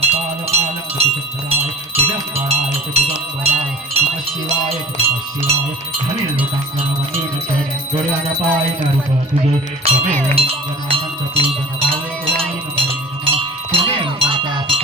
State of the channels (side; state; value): both; normal; correlation 0.42